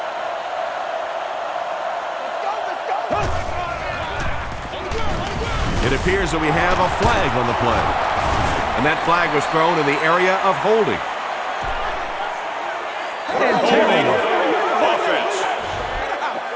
It appears that we have a flag on the play. And that flag was thrown in the area of holding. Offense.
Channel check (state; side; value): identical; both; correlation 1.00